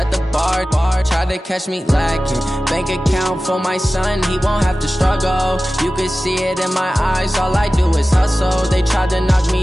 the bar, tried to catch me lacking. Bank account for my son, he won't have to struggle. You can see it in my eyes, all I do is hustle. They tried to knock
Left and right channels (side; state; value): both; normal; correlation 0.96